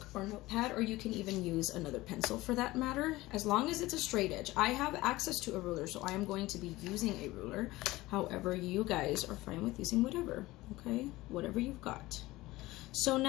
or notepad, or you can even use another pencil for that matter, as long as it's a straight edge. I have access to a ruler, so I am going to be using a ruler. However, you guys are fine with using whatever, okay? Whatever you've got. So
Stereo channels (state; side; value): quieter; right; 18.8 dB